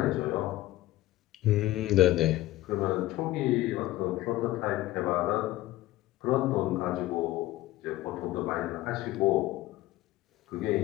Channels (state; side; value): quieter; right; 16.4 dB